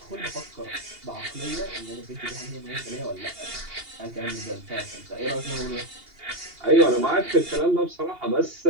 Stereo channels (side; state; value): left; late; 2.8 ms